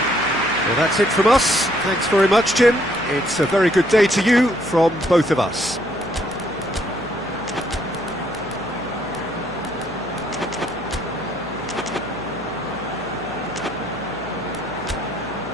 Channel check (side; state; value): left; noise; hum, 20 dB below the sound